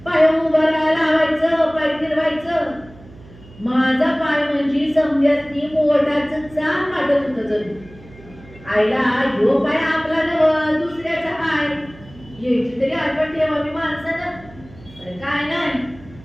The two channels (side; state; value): right; noise; hum, 22 dB below the sound